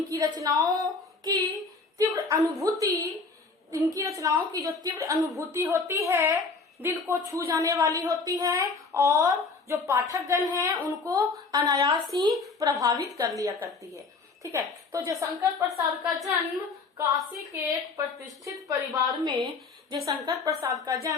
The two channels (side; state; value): right; quieter; 4.3 dB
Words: रचनाओं की जो तीव्र अनुभूति होती है दिल को छू जाने वाली होती है और जो पाठकगण हैं उनको अनायास ही प्रभावित कर लिया करती है। ठीक है, तो जयशंकर प्रसाद का जन्म काशी के एक प्रतिष्ठित परिवार में जयशंकर प्रसाद का